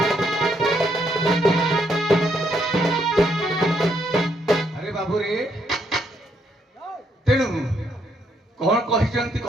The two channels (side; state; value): both; normal; correlation 0.74